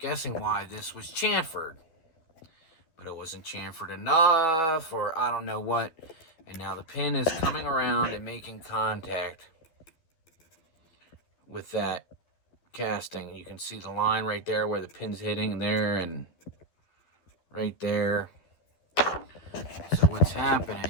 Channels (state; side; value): late; right; 12 ms